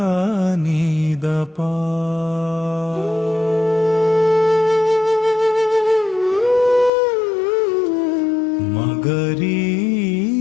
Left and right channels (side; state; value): right; drops out; at 6.9 s